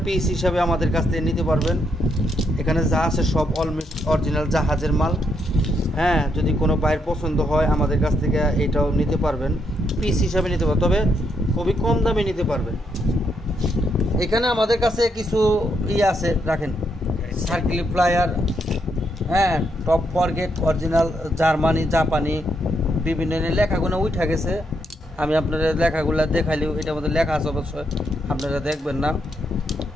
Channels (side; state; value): both; normal; correlation 0.77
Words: পিস হিসাবে আমাদের কাছ থেকে নিতে পারবেন। এখানে যা আছে সব অলমোস্ট অরিজিনাল জাহাজের মাল। হ্যাঁ, যদি কোনো বাইরের পছন্দ হয় আমাদের কাছ থেকে এটাও নিতে পারবেন, পিস হিসাবে নিতে পারবেন, তবে খুবই কম দামে নিতে পারবেন। এখানে আমাদের কাছে কিছু আছে, রাখেন সার্কিল প্লায়ার, হ্যাঁ, টপ ফরগেট, অরিজিনাল জার্মানি, জাপানি, বিভিন্ন লেখাগুলো উঠে গেছে। আমি আপনাদের লেখাগুলো দেখাইলেও এটার মধ্যে লেখা আছে, অবশ্যই আপনারা দেখবেন না।